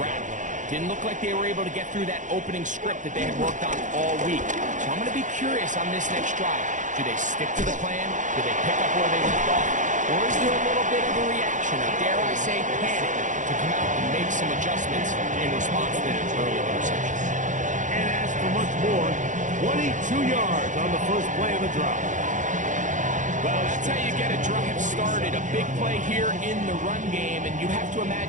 Didn't look like they were able to get through that opening script that they had worked on all week. So I'm going to be curious on this next drive. Do they stick to the plan? Do they pick up where they left off? Or is there a little bit of a reaction, or dare I say panic, to come out and make some adjustments in response to that early interception? And as for much more, 22 yards on the first play of the drive. Well, that's how you get a drive started. A big play here in the run game, and you have to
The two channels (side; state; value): left; late; 0.36 ms